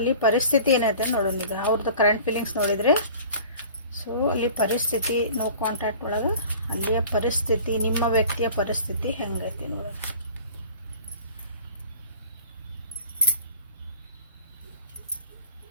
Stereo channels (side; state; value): both; inverted; correlation -0.44